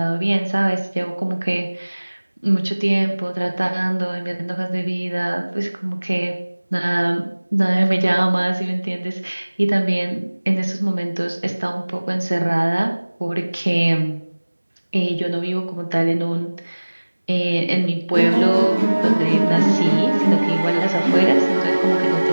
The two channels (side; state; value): both; inverted; correlation -1.00